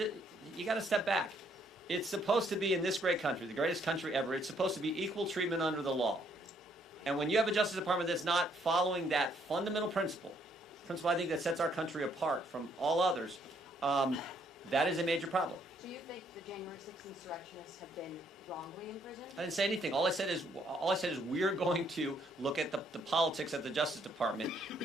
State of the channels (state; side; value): normal; both; correlation 0.69